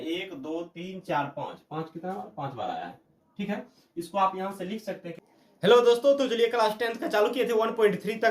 2 3 4 5, 5 कितना बार, 5 बार आया है। ठीक है, इसको आप यहां से लिख सकते हैं। हेलो दोस्तों, तो चलिए क्लास 10th का चालू किए थे, 1.3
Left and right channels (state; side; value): identical; both; correlation 1.00